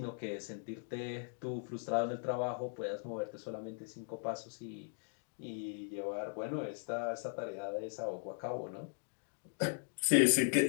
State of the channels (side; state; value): right; silent; 52 dB below the other